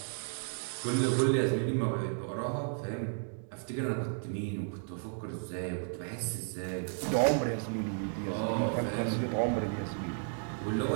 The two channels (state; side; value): silent; left; 56 dB below the other